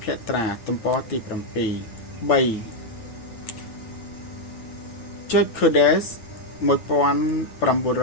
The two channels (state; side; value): late; right; 8.9 ms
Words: ភត្រាទំព័រទី7 3. George Codes